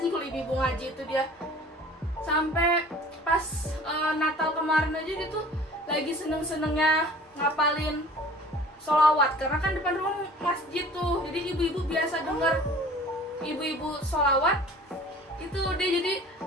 kalau ibu-ibu ngaji itu dia. Sampai pas Natal kemarin aja dia tuh lagi seneng-senengnya ngapalin sholawat, karena kan depan rumah masjid tuh, jadi ibu-ibu biasa denger ibu-ibu sholawat itu dia jadi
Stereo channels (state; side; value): normal; both; correlation 0.46